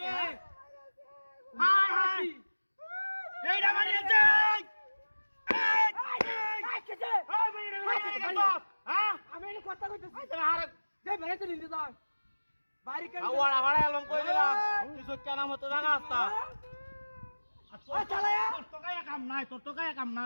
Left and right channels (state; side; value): inverted; both; correlation -1.00